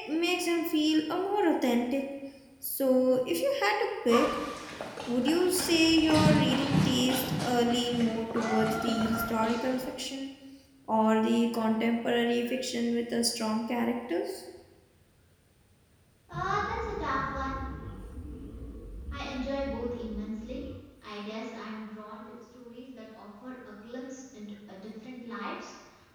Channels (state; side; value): identical; both; correlation 1.00